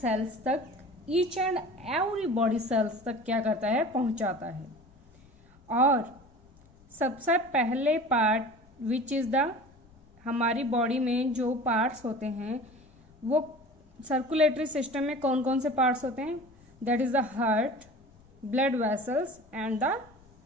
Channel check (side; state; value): left; noise; rumble, 28 dB below the sound